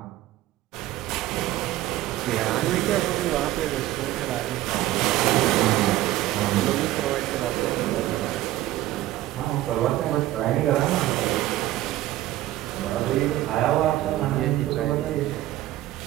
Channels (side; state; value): left; quieter; 15.1 dB